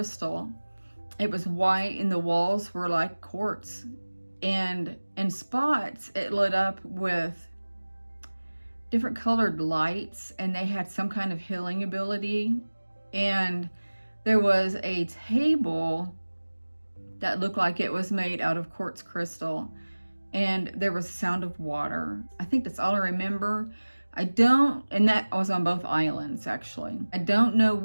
It was white and the walls were like quartz, and in spots it lit up with different colored lights, and they had some kind of healing ability. And there was a table that looked like it was made out of quartz crystal, and there was sound of water. I think that's all I remember. And that was on both islands actually. I don't know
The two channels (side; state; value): both; inverted; correlation -1.00